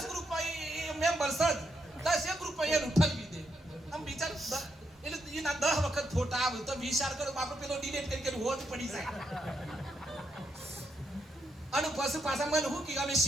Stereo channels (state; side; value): normal; both; correlation 0.80